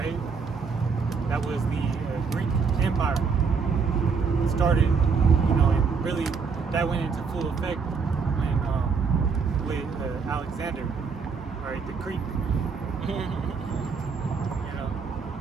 that was the Greek Empire. It started, and really that went into full effect when with Alexander, all right, the Greek.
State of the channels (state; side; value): quieter; left; 5.4 dB